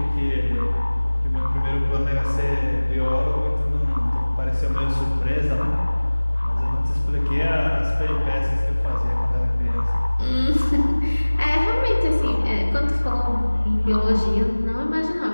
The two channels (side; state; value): both; inverted; correlation -1.00